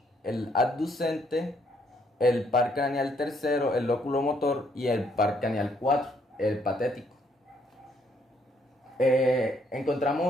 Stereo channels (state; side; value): normal; both; correlation 0.69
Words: el abducente, el par craneal tercero, el oculomotor, y el par craneal 4, el patético.